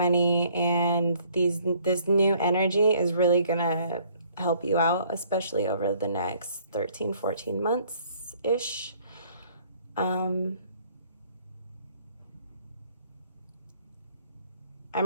and this new energy is really gonna help you out, especially over the next 13, 14 months-ish. I'm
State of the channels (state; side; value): inverted; both; correlation -0.61